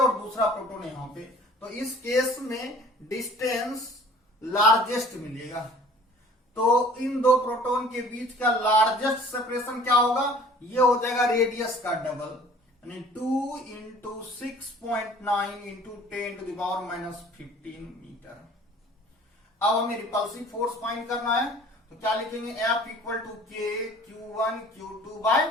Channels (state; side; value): normal; both; correlation 0.49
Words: दूसरा प्रोटॉन यहां पे, तो इस केस में डिस्टेंस लार्जेस्ट मिलेगा। तो इन दो प्रोटॉन के बीच का लार्जेस्ट सेपरेशन क्या होगा? ये हो जाएगा रेडियस का डबल, यानी 2 into 6.9 into 10 to the power minus 15 metre. अब हमें रिपल्सिव फोर्स फाइंड करना है, तो क्या लिखेंगे? F equal to K Q1 Q2 by